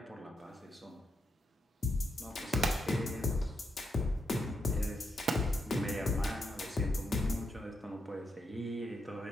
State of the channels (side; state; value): both; normal; correlation 0.82